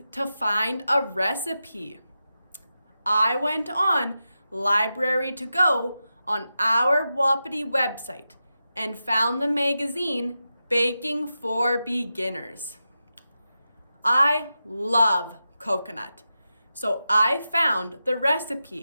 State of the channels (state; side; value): inverted; both; correlation -0.90